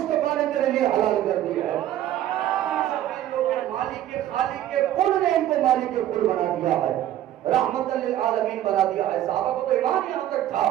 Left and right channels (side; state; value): left; quieter; 12.5 dB